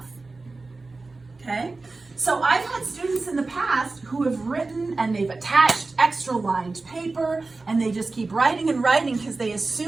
Okay? So I've had students in the past who have written and they've attached extra lined paper and they just keep writing and writing because they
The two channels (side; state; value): left; quieter; 3.6 dB